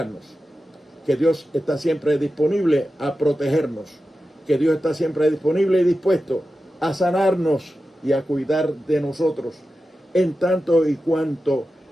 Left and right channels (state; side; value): normal; both; correlation 0.92